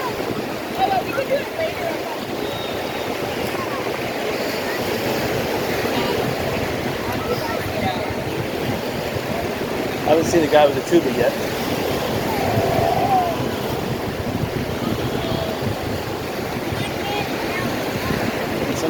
I haven't seen the guy with the tuba yet. And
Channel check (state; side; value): identical; both; correlation 1.00